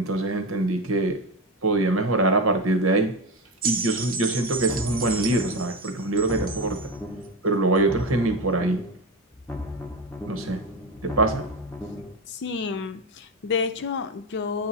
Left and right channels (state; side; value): normal; both; correlation 0.18